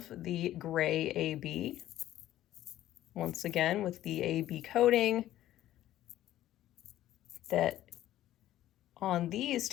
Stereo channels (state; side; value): quieter; right; 13.6 dB